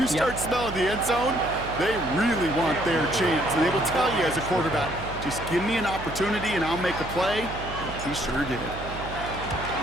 start smelling the end zone, they really want their chance. And they will tell you as a quarterback, just give me an opportunity and I'll make a play. And he sure did.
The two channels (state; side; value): noise; right; hum, 10 dB below the sound